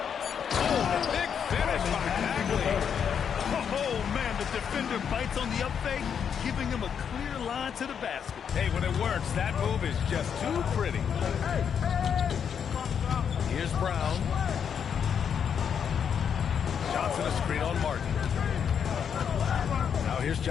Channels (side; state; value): right; quieter; 7.6 dB